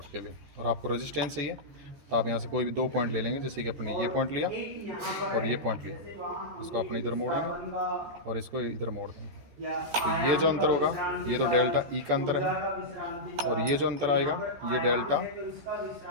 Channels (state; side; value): late; left; 14 ms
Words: के लिए। और आपको रेजिस्टेंस चाहिए तो आप यहाँ से कोई भी 2 पॉइंट ले लेंगे, जैसे कि अपने ये पॉइंट लिया और ये पॉइंट लिया, इसको अपने इधर मोड़ेंगे और इसको इधर मोड़ देंगे। तो ये जो अंतर होगा ये तो डेल्टा E का अंतर है, और ये जो अंतर आएगा ये डेल्टा